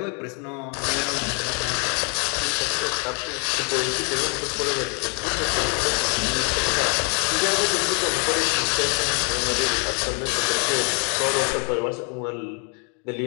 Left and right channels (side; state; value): right; quieter; 37.6 dB